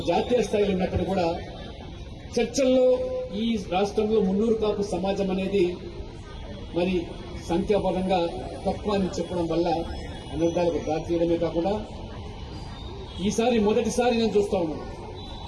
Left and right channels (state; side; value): identical; both; correlation 1.00